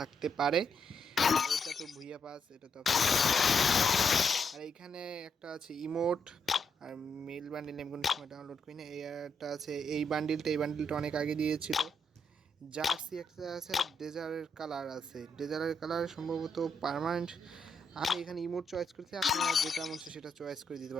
থাকতে পারে। এটা তো ভুইয়া পাস, এটা তো আর এইখানে একটা আছে ইমোট আর মেল বান্ডিল, আমি কোনো সময় ডাউনলোড করি না। এইটা আছে, এই বান্ডিলটা অনেক আগে দিয়েছিল। জার্সি একটা আছে, ডেজার্টের কালার আছে, ডেজার্টের কালার সম্ভবত পার্মানেন্ট। আমি এখানে ইমোট চয়েস করছি, আপনারা যেটা মন চায় সেটা চয়েস করে দিতে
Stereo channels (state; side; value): normal; both; correlation 0.78